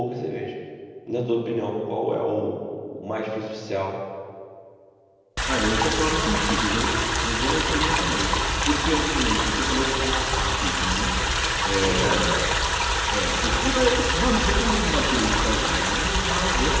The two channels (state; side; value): identical; both; correlation 1.00